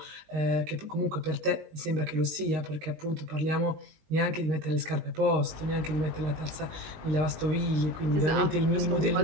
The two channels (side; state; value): left; late; 19 ms